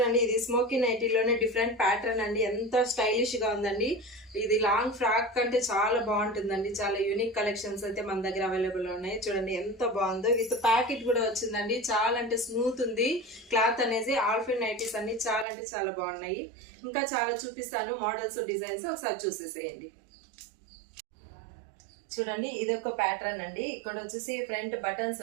ఇది స్మోకీ నైటీలోనే డిఫరెంట్ ప్యాటర్న్ అండి. ఎంత స్టైలిష్ గా ఉందండి. ఇది లాంగ్ ఫ్రాక్ కంటే చాలా బాగుంటుందండి. చాలా యూనిక్ కలెక్షన్స్ అయితే మన దగ్గర అవైలబుల్ ఉన్నాయి. చూడండి ఎంత బాగుందో. విత్ ప్యాకెట్ కూడా వచ్చిందండి. చాలా అంటే స్మూత్ ఉంది క్లాత్ అనేది. ఆల్ఫిన్ నైటీస్ అన్ని చాలా అంటే చాలా బాగున్నాయి. ఇంకా చాలా చూపిస్తాను మోడల్స్, డిజైన్స్, ఒకసారి చూసేసేయండి. చూడండి, ఇది ఒక ప్యాటర్న్ అండి. ఇక్కడ వచ్చేసి ఫ్రంట్ బటన్స్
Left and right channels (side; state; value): left; drops out; at 15.5 s